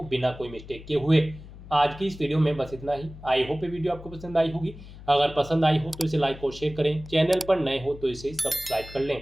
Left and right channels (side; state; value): left; noise; hum, 16 dB below the sound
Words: बिना कोई मिस्टेक किए हुए। आज की इस वीडियो में बस इतना ही। आई होप ये वीडियो आपको पसंद आई होगी। अगर पसंद आई हो तो इसे लाइक और शेयर करें, चैनल पर नए हो तो इसे सब्सक्राइब कर लें।